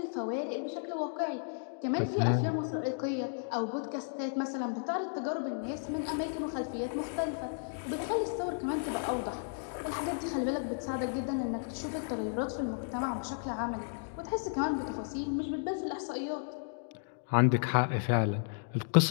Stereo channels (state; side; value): silent; right; digital silence